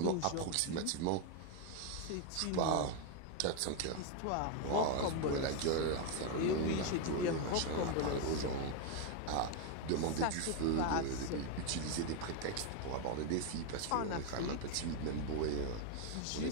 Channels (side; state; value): both; different; correlation 0.01